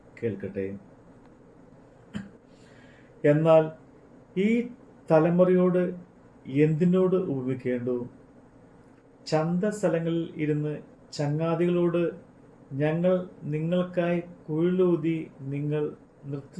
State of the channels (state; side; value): identical; both; correlation 1.00